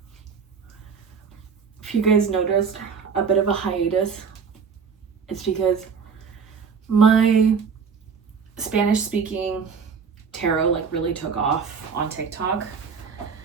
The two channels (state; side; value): quieter; left; 6.0 dB